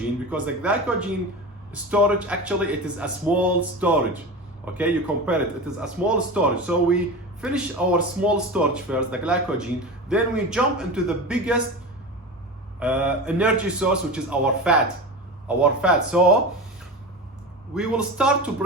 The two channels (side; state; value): both; normal; correlation 0.27